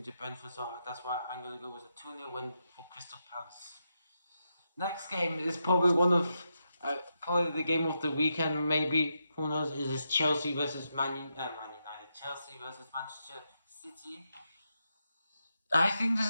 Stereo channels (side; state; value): both; inverted; correlation -0.85